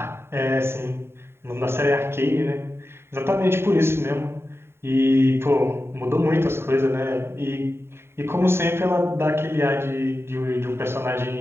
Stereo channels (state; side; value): late; left; 0.12 ms